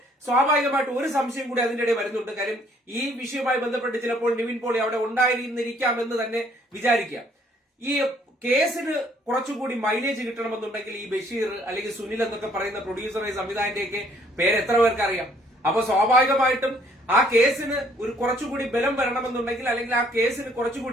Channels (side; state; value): both; normal; correlation 0.62